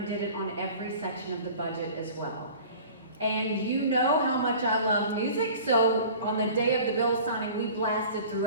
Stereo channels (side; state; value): both; inverted; correlation -0.43